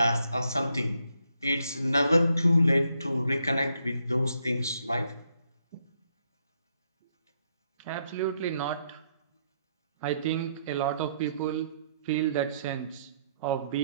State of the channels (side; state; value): both; inverted; correlation -0.74